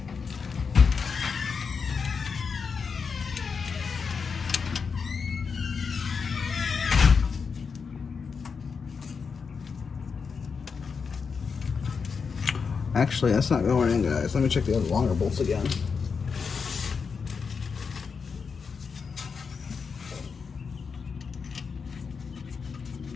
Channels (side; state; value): right; quieter; 5.6 dB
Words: Actually, that's not going in, guys. Let me check the other longer bolts again.